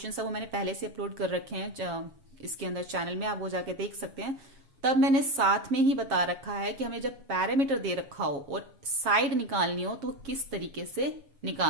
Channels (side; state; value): left; late; 7.3 ms